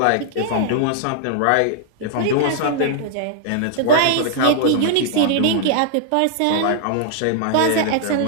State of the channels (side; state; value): both; different; correlation -0.01